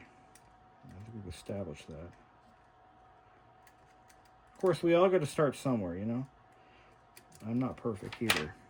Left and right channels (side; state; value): both; identical; correlation 1.00